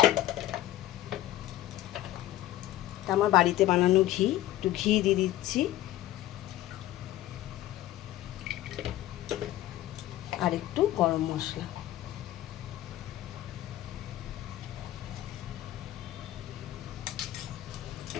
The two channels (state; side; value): quieter; right; 14.4 dB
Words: আমার বাড়িতে বানানো একটু ঘি দিয়ে দিচ্ছি। আর একটু গরম মশলা